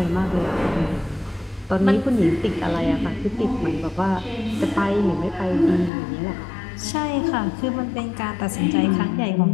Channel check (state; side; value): drops out; right; at 5.9 s